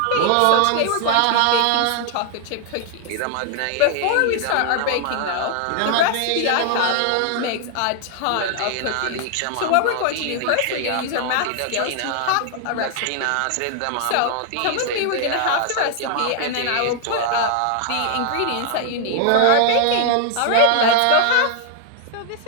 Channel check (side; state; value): both; different; correlation 0.00